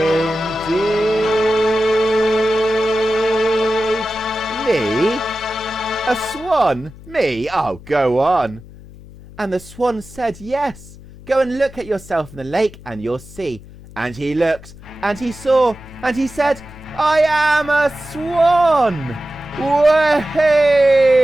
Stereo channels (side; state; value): left; noise; hum, 19 dB below the sound